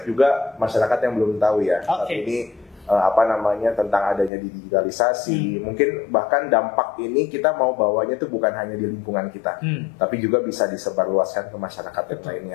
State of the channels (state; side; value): drops out; right; at 4.3 s